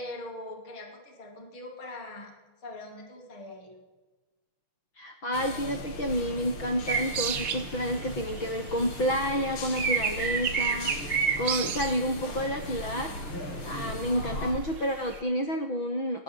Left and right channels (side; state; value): right; late; 5.6 ms